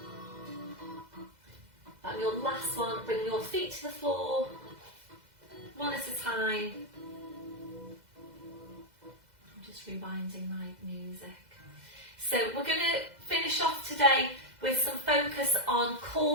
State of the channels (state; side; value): late; left; 2.0 ms